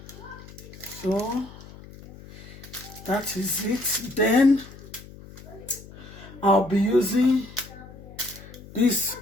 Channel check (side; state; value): left; noise; hum, 17 dB below the sound